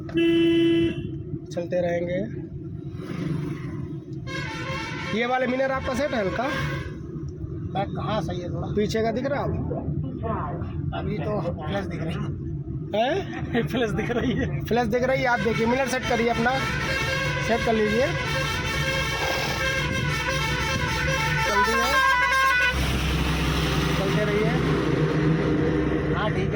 चलते रहेंगे। ये वाले मिरर आपका सेट है हल्का? बैक कहाँ सही है थोड़ा? पीछे का दिख रहा है आप? अभी तो प्लस दिख रही हैं? प्लस दिख रही है। फ्लैश दिख रही है? आप देखिए, मिरर सेट करिए अपना, सेट कर लीजिए। जल्दी है, चलते रहिए। हाँ ठीक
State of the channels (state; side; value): identical; both; correlation 1.00